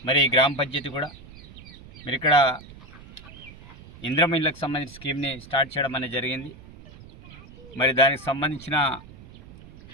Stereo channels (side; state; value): right; noise; rumble, 19 dB below the sound